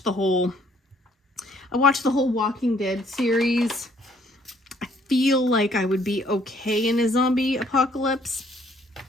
the whole Walking Dead series. I feel like I would be okay in a zombie apocalypse.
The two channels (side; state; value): both; normal; correlation 0.63